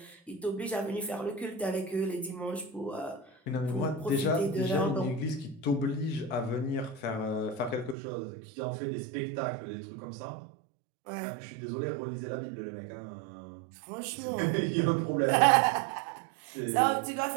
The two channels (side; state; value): left; drops out; at 8.0 s